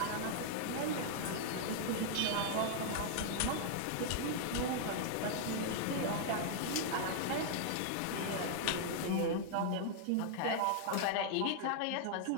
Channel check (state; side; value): different; both; correlation -0.01